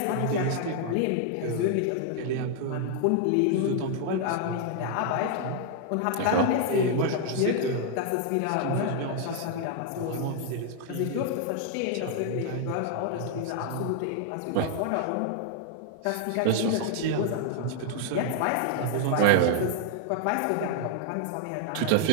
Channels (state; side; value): different; both; correlation 0.00